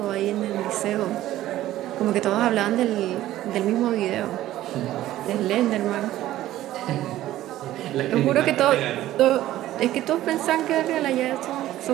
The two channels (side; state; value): left; quieter; 14.3 dB